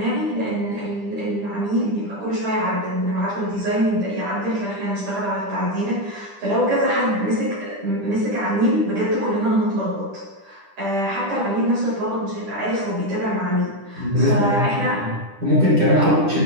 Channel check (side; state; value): left; late; 10 ms